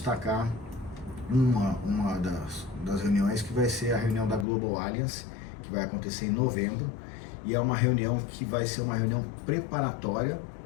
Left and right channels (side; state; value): right; drops out; at 4.5 s